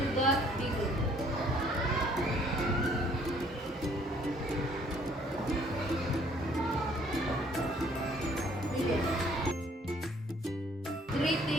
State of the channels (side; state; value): both; normal; correlation 0.61